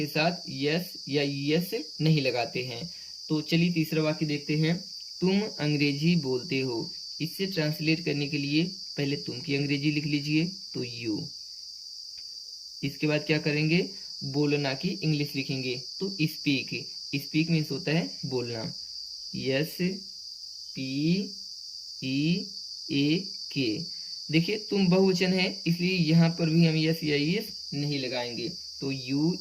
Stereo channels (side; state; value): both; identical; correlation 1.00